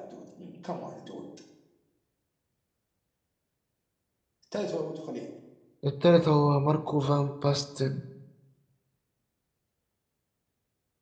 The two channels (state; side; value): identical; both; correlation 1.00